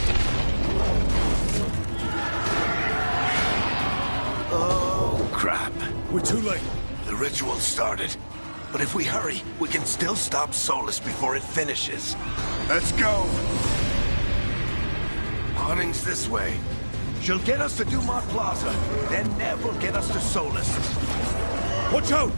Oh, crap. We're too late. The ritual started. But if we hurry, we can still stop Solus before it finishes. Let's go! Harding's this way. She'll get us to Dumat Plaza, then Nev will get us to Solus. Watch out!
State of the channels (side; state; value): both; inverted; correlation -1.00